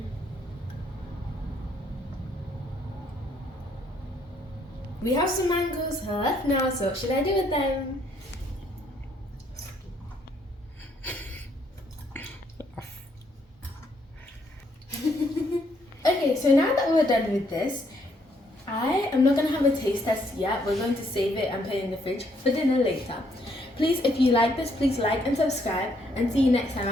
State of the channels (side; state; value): both; normal; correlation 0.70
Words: We have some mangoes left now, so what should I do with them? Okay, so now that we're done with this, I am not going to have a taste test yet. We're going to save it and put it in the fridge for dinner later. Please, if you like this, please like and subscribe, and see you next time